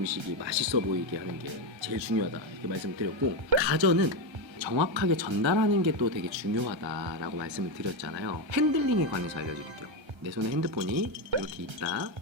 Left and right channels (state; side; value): late; left; 1.3 ms